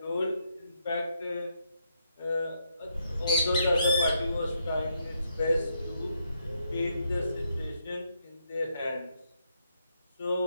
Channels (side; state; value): both; inverted; correlation -0.78